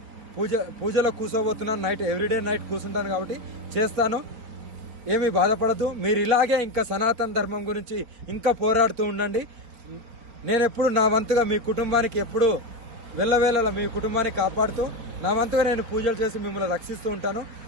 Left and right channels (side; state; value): left; late; 4.3 ms